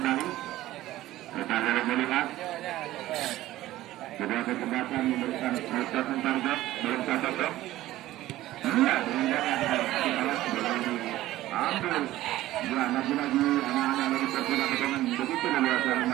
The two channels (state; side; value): quieter; left; 15.5 dB